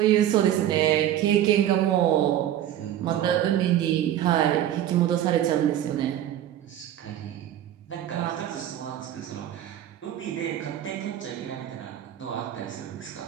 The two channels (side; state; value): left; quieter; 11.6 dB